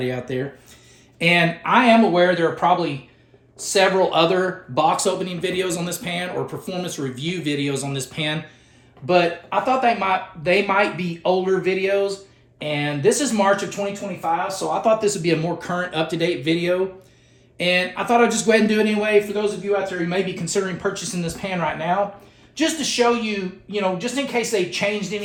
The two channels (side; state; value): both; identical; correlation 1.00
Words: out there. And I am aware there are probably several other box opening videos on this pan or performance review videos on this pan, but I thought they might be older videos, and this is March of 2025, so I thought this would be a more current, up-to-date video, and I thought I'd just go ahead and do it anyway for those of you out there who may be considering purchasing this pan right now, just to show you, just in case they changed